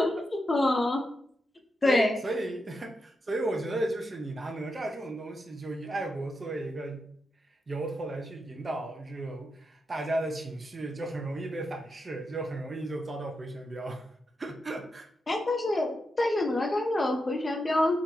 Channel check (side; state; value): both; normal; correlation 0.86